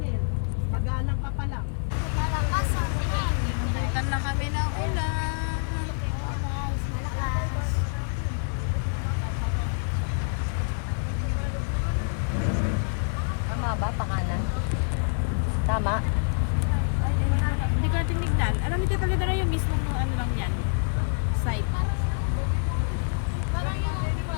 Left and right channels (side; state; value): right; silent; 57 dB below the other